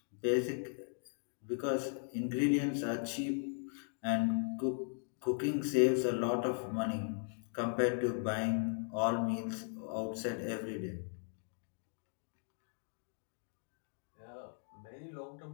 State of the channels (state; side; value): silent; right; 52 dB below the other